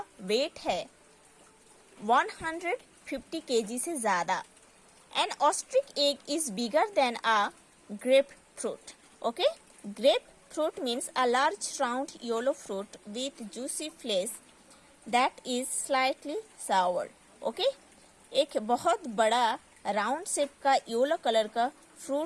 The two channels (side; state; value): both; identical; correlation 1.00